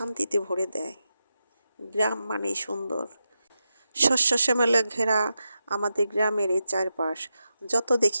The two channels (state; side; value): inverted; both; correlation -0.88